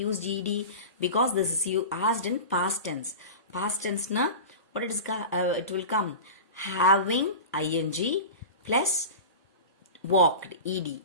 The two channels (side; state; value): both; inverted; correlation -0.31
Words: used ed? Because this is you asked in past tense. Past tense na what it will come? Having ing plus walked, ed.